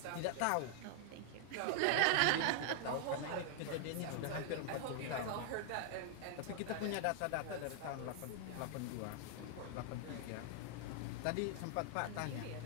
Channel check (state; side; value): different; both; correlation 0.00